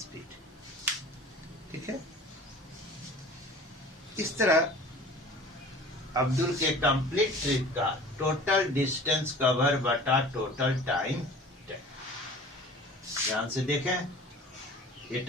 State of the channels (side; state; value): both; normal; correlation 0.43